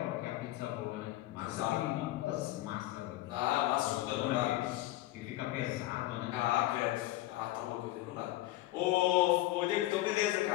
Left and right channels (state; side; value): quieter; right; 16.5 dB